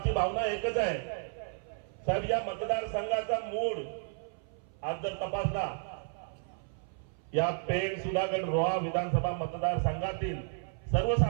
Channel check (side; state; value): left; silent; 56 dB below the other